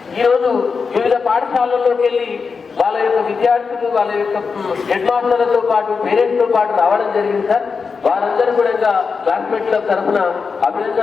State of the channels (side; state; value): right; quieter; 5.2 dB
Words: ఈరోజు వివిధ పాఠశాలల్లోకి వెళ్ళి వాళ్ళ యొక్క విద్యార్థులు, వాళ్ళ యొక్క హెడ్ మాస్టర్లతో పాటు పేరెంట్స్ తో పాటు రావడం జరిగింది సార్. వారందరూ కూడా క్లాస్మేట్ క్లబ్ తరఫున